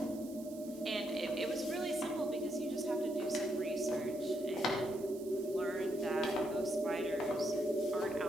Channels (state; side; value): noise; right; hiss, 19 dB below the sound